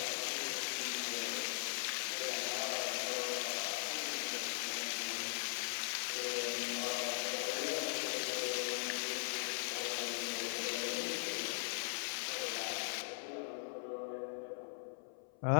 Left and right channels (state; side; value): silent; right; 51 dB below the other